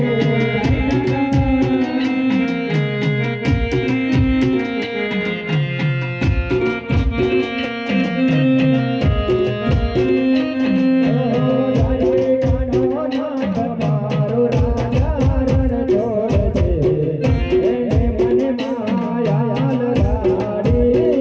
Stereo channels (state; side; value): identical; both; correlation 1.00